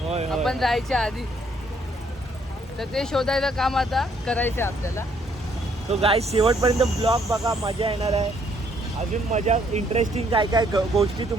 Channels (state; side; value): normal; both; correlation 0.68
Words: आपण जायच्या आधी. तर ते शोधायचं काम आता करायचं आपल्याला. तो गाईज शेवटपर्यंत ब्लॉग बघा, मजा येणार आहे. अजून मजा इंटरेस्टिंग काय काय गोष्टी